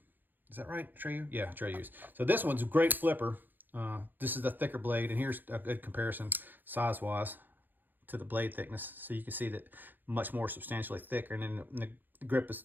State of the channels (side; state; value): left; late; 0.089 ms